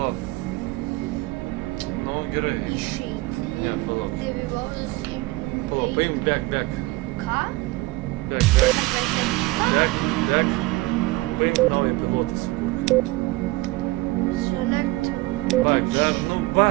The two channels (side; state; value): left; quieter; 20.9 dB